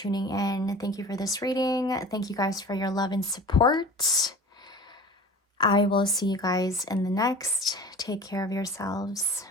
in. Thank you for this reading. Thank you guys for your love and support. I will see you guys in the next. Take care of yourselves.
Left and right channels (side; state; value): both; normal; correlation 0.40